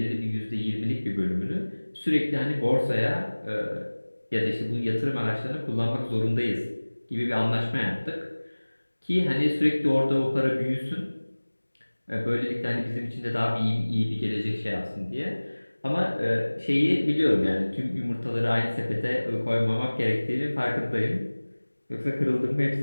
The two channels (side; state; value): both; inverted; correlation -1.00